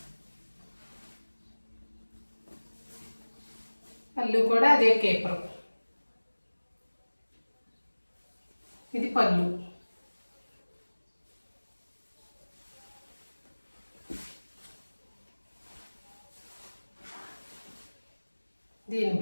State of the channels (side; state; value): both; inverted; correlation -1.00